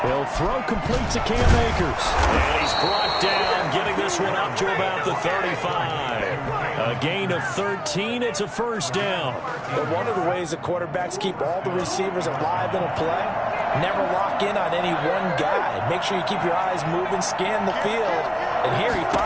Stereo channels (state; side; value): identical; both; correlation 1.00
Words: He'll throw complete to Cam Akers. And he's brought down, getting this one up to about the 35. A gain of 13. It's a 1st down. But one of the ways the quarterbacks keep all the receivers alive in a play, never lock in on any one guy. Make sure you keep your eyes moving, scan the field. And here he